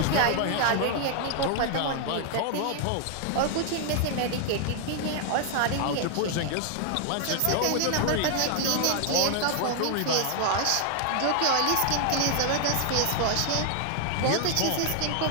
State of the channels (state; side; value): different; both; correlation 0.00